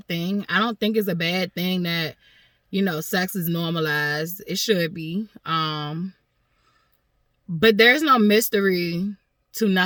thing. I don't think it's a bad thing that sex is normalized. It should be. But there's no mystery to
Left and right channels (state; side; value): identical; both; correlation 1.00